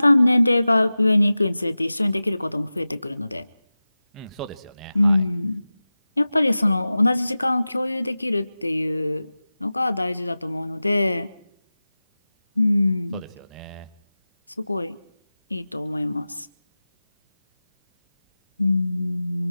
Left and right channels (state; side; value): inverted; both; correlation -0.97